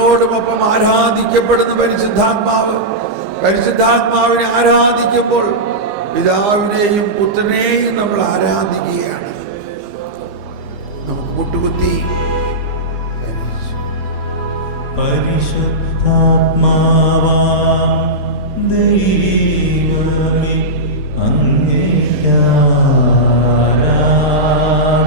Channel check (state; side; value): late; left; 15 ms